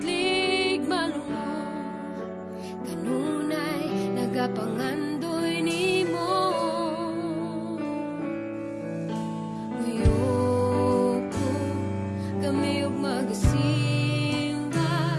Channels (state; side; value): identical; both; correlation 1.00